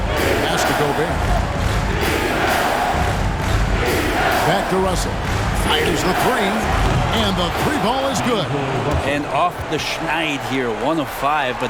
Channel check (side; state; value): both; identical; correlation 1.00